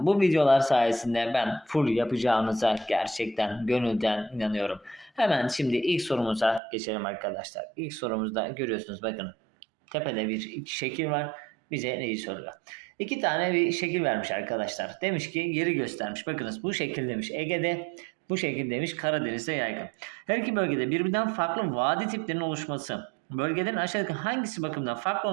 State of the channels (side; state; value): left; drops out; at 6.6 s